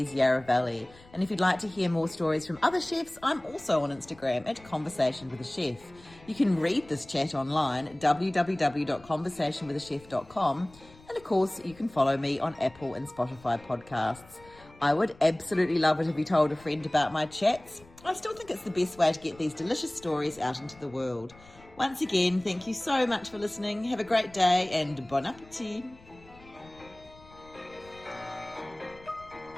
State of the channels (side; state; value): left; noise; rumble, 24 dB below the sound